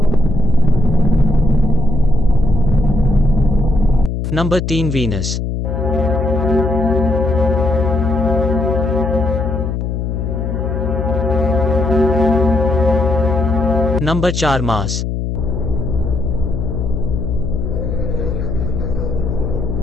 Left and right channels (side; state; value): left; noise; hum, 2 dB below the sound